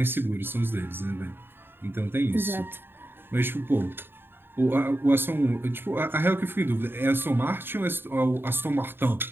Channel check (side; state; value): left; late; 0.10 ms